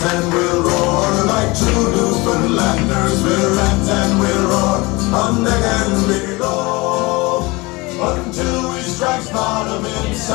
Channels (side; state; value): right; quieter; 23.9 dB